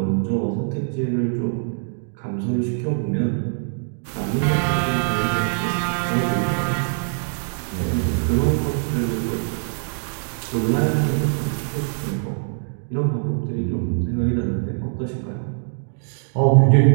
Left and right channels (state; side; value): silent; left; digital silence